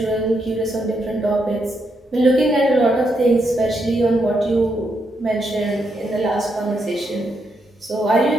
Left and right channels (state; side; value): normal; both; correlation 0.80